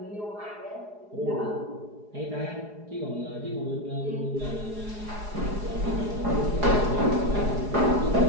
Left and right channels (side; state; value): left; late; 4.8 ms